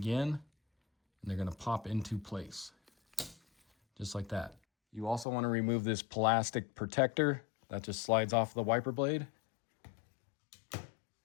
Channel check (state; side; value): drops out; right; at 5.2 s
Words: and they're gonna pop into place, just like that. You also wanna remove this plastic protector that just slides off the wiper blade.